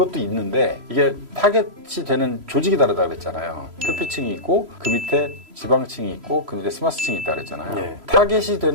있는데 이게 타겟이 되는 조직이 다르다 그랬잖아요. 표피층이 있고 그 밑에 지방층이 있고 그 밑에 스마스층이 있다 그랬잖아요. 네. 타겟이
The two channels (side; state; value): left; late; 3.0 ms